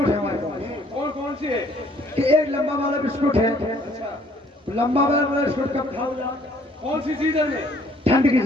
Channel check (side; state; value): both; normal; correlation 0.61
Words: है हमारे पास। कौन कौन सी है? कि एक लंबा वाला बिस्कुट है। अच्छा। लंबा वाला बिस्कुट कब खाओ? कौन सी सीजन में? ठंड की